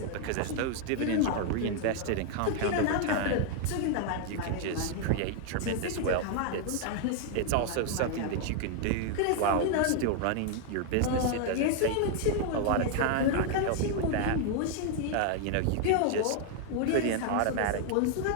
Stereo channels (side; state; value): both; different; correlation 0.00